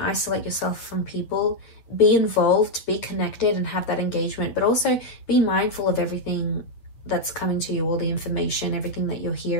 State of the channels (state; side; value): late; right; 9.0 ms